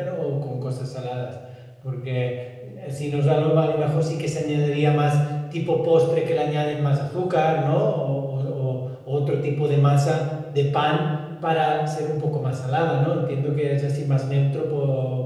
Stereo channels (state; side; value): identical; both; correlation 1.00